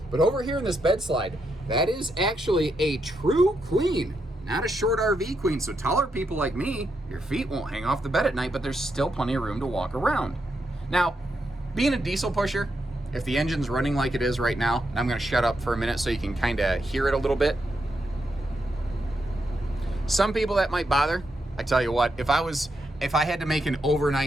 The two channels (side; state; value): both; normal; correlation 0.82